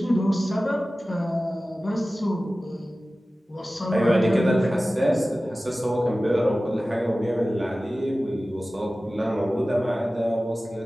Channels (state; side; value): normal; both; correlation 0.96